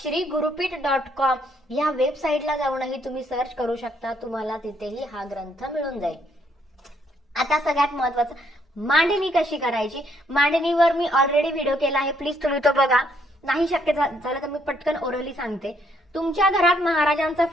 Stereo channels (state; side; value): normal; both; correlation 0.70